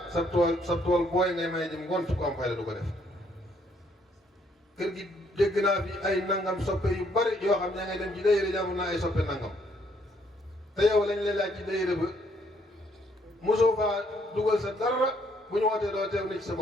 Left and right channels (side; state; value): both; normal; correlation 0.69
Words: sa tool booy ngay may jëm ngont ku am fayda du ko def kër gi dégg naa fi ay nangam soppe yu bari yoo xam ne ngay dem ci dayre jàmm naa ay soppe nangam te yow lañ lay laaj ci dayre ba mosoo faa dugal sa dara bu ñu wootee doo teew ni ci sa